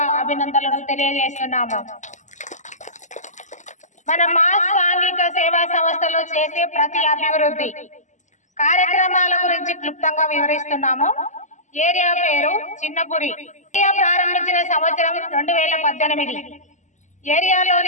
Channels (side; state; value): right; late; 0.35 ms